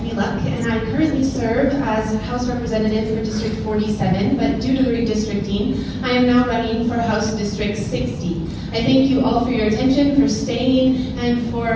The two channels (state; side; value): identical; both; correlation 1.00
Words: Luck, and I currently serve as House Representative for District 47, but due to the redistricting, I am now running for House District 60. I thank you all for your attention, for staying, and